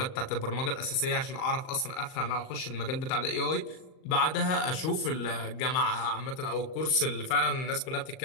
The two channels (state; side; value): late; right; 38 ms